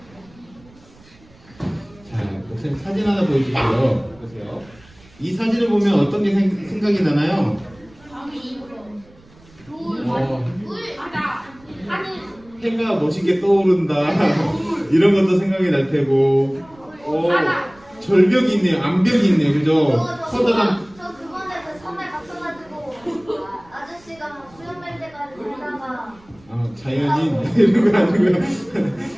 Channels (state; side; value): noise; right; rumble, 27 dB below the sound